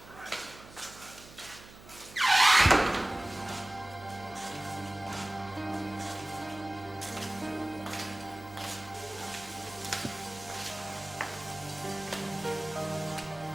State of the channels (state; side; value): noise; right; hum, 19 dB below the sound